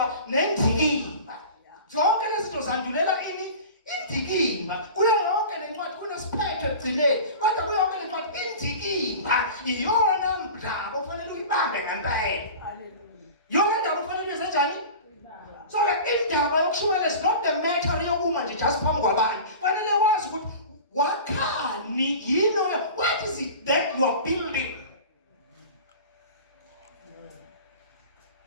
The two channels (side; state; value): both; inverted; correlation -0.37